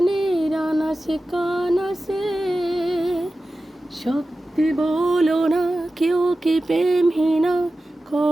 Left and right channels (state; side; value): normal; both; correlation 0.94